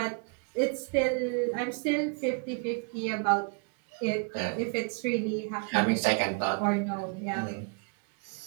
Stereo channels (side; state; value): left; quieter; 36.5 dB